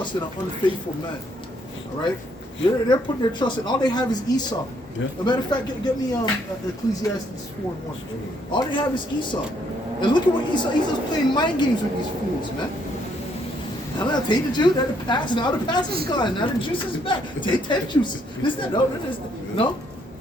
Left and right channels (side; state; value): both; normal; correlation 0.70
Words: in an unfaithful man. All right? They're putting their trust in, all they have is Esau. Yeah. As a matter of fact, get me Ecclesiastes 4:1. All they have is Esau. And look at what Esau's playing mind games with these fools, man. Now take the juice, now the pass is gone, now the juice is back. Take 10 juices. No.